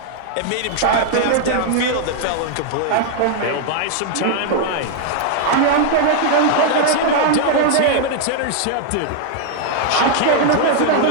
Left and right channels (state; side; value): different; both; correlation 0.00